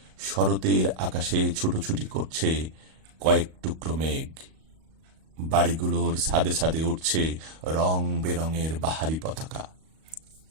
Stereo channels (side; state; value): left; late; 38 ms